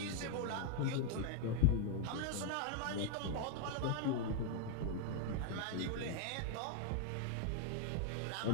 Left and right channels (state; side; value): different; both; correlation 0.01